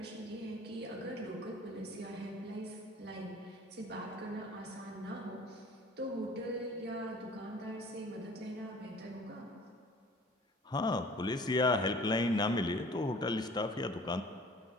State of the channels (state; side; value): normal; both; correlation 0.48